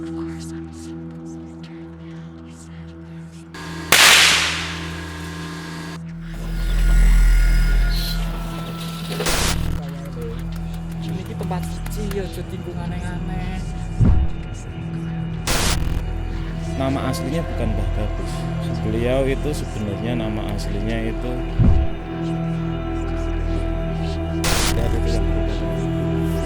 tempat suci ya, tinggung aneh-aneh. Nama aslinya bukan Mbah Gabus. Beliau itu sebenarnya nama aslinya itu dari yang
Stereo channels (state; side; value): identical; both; correlation 1.00